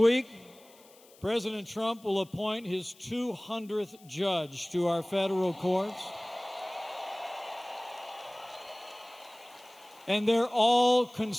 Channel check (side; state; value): left; noise; hiss, 26 dB below the sound